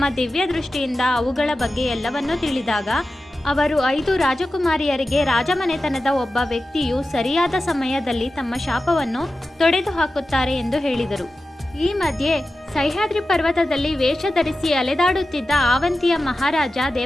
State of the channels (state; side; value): normal; both; correlation 0.93